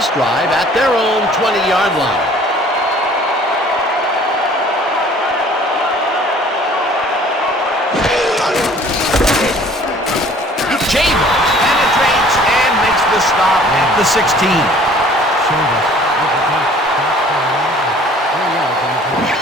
drive at their own 20-yard line. Chambers penetrates and makes the stop at the 16.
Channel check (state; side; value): normal; both; correlation 0.53